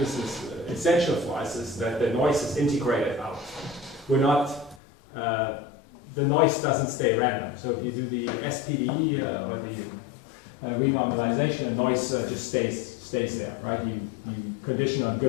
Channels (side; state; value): right; drops out; at 4.8 s